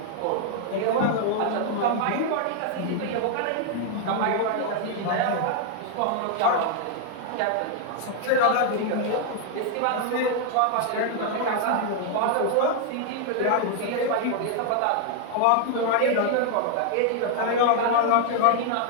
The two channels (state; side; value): different; both; correlation 0.00